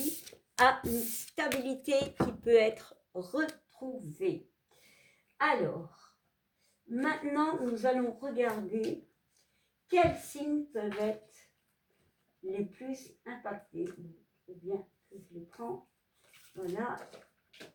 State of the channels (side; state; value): both; identical; correlation 1.00